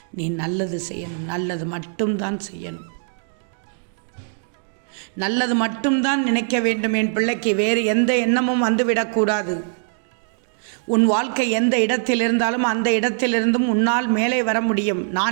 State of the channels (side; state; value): left; silent; digital silence